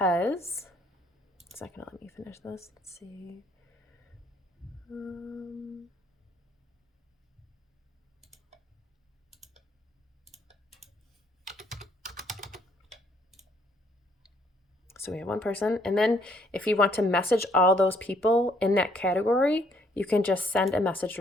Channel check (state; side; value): normal; both; correlation 0.66